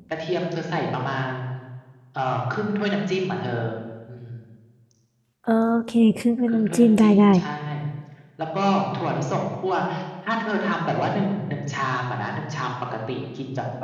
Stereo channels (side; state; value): both; identical; correlation 1.00